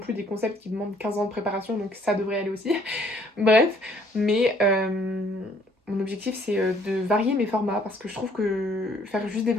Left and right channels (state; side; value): normal; both; correlation 0.62